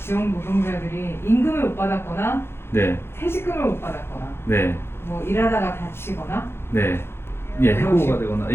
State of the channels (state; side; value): late; right; 0.12 ms